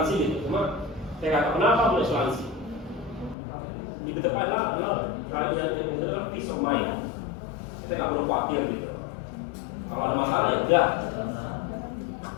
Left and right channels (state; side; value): drops out; right; at 3.4 s